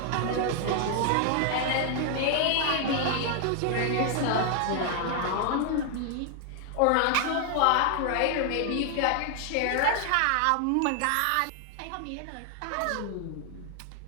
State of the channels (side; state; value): both; different; correlation 0.00